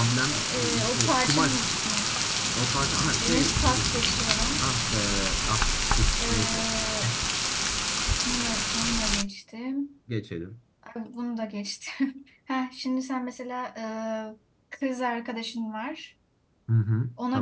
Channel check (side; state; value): both; identical; correlation 1.00